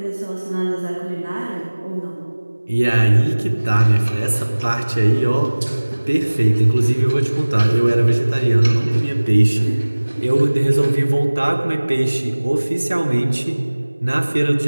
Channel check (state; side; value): inverted; both; correlation -1.00